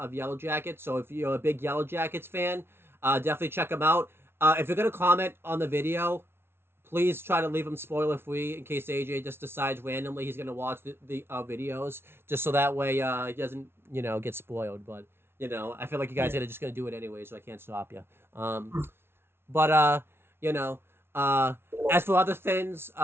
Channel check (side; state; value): left; late; 0.12 ms